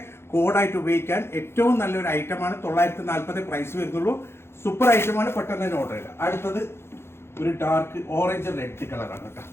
കോഡായിട്ട് ഉപയോഗിക്കാൻ ഏറ്റവും നല്ലൊരു ഐറ്റമാണ്. 940 പ്രൈസ് വരുന്നുള്ളൂ. സൂപ്പർ ഐറ്റമാണ്. പെട്ടെന്ന് തന്നെ ഓർഡർ ചെയ്യുക. അടുത്തത് ഒരു ഡാർക്ക് ഓറഞ്ച് റെഡ് കളറാണ് കേട്ടോ.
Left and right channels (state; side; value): late; right; 0.12 ms